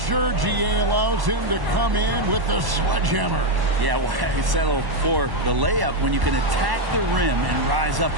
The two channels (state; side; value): late; left; 1.1 ms